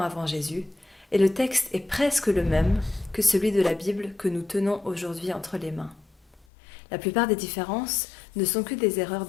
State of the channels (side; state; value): right; drops out; at 6.5 s